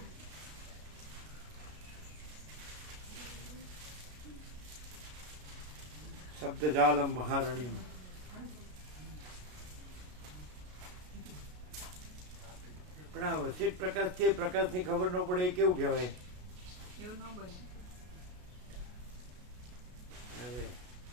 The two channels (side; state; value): left; late; 33 ms